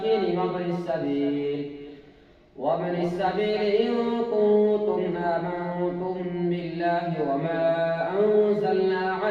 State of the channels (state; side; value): identical; both; correlation 1.00